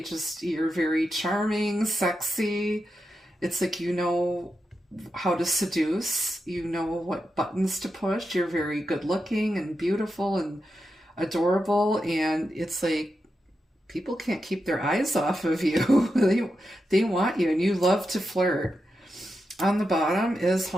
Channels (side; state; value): both; normal; correlation 0.88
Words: You're very charming, sexy. It's like you know how to seduce, you know what buttons to push, you're very good looking and beautiful and adorable, and it's like people can't keep their eyes off of you. they want you, and you love to flirt. On the bottom is